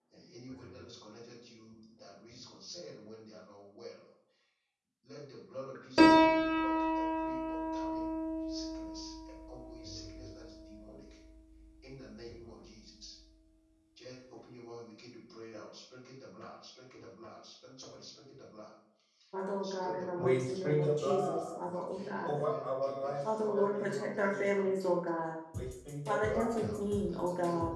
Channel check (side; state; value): both; identical; correlation 1.00